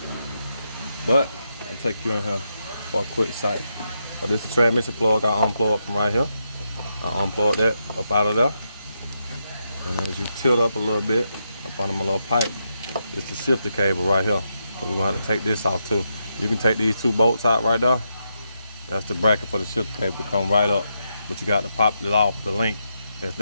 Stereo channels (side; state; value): both; inverted; correlation -0.83